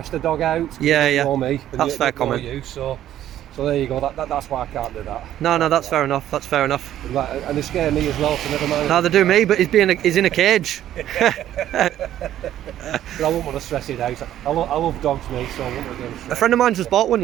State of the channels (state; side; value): quieter; left; 12.0 dB